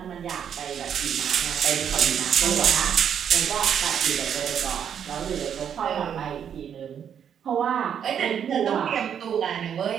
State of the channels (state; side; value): quieter; left; 8.4 dB